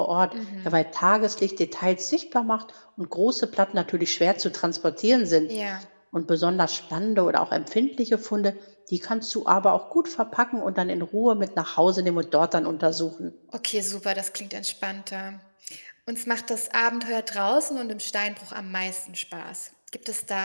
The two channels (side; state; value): both; inverted; correlation -1.00